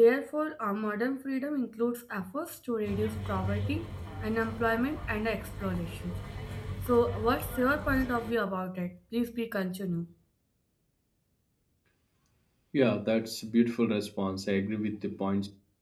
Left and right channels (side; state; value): both; identical; correlation 1.00